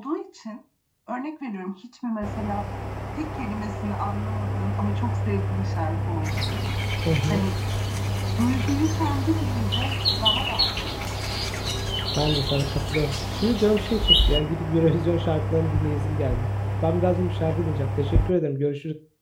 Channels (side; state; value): both; identical; correlation 1.00